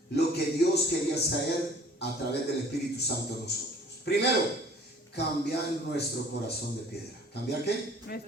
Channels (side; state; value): both; normal; correlation 0.51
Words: lo que Dios quería hacer a través del Espíritu Santo en nosotros. Primero, cambiar nuestro corazón de piedra. ¿Cambiar qué?